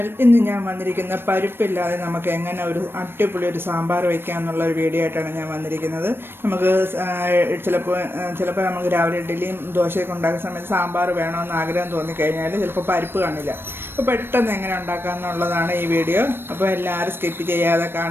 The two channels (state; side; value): late; left; 0.10 ms